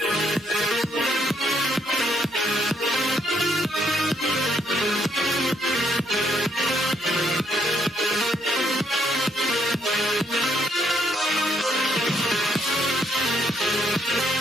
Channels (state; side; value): normal; both; correlation 0.72